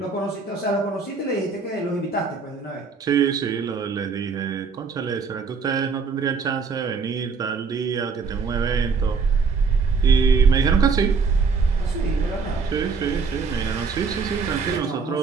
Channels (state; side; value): quieter; left; 4.9 dB